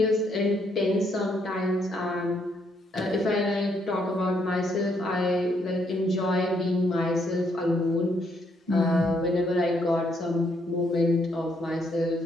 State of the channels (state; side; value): normal; both; correlation 0.73